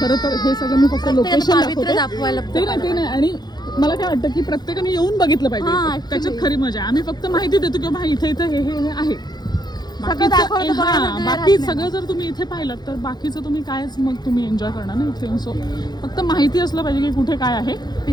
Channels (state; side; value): late; right; 0.20 ms